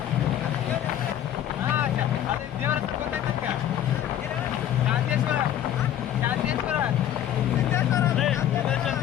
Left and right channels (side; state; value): right; quieter; 11.1 dB